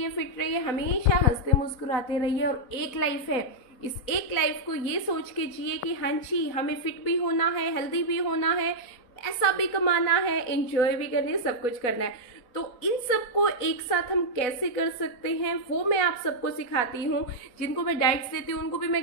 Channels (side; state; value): right; late; 4.1 ms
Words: fit रहिए, हमेशा हंसते मुस्कुराते रहिए। और एक लाइफ है, इस एक लाइफ को ये सोच के जिए कि हाँ जी हमें फिट भी होना है, हेल्दी भी होना है, पैसा भी कमाना है, एंजॉय भी करनी है, सब कुछ करना है। तो इन सबको एक साथ हम कैसे कर सकते हैं वो मैं आप सबको सिखाती हूँ। जिनको मैं डाइट्स देती हूँ उनको भी